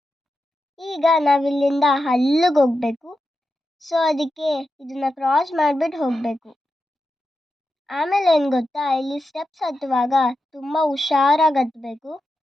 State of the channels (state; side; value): normal; both; correlation 0.89